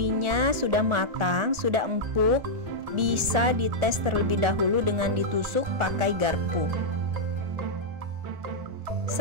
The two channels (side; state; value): left; late; 1.4 ms